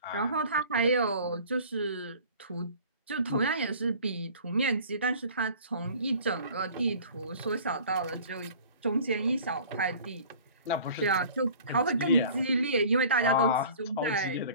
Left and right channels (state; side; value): inverted; both; correlation -0.46